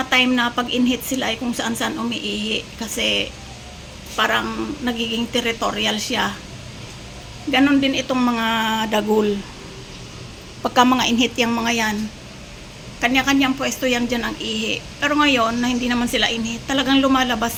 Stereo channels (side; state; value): both; identical; correlation 1.00